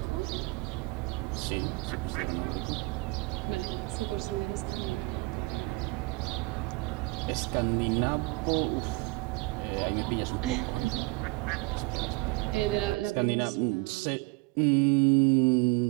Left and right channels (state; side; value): quieter; left; 25.3 dB